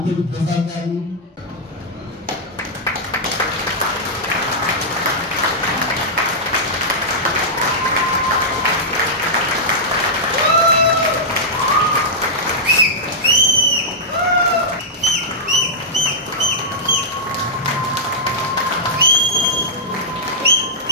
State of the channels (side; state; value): both; normal; correlation -0.09